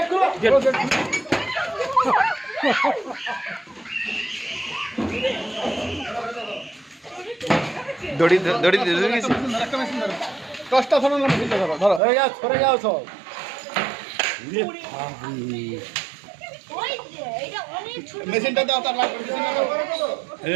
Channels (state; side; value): drops out; left; at 12.0 s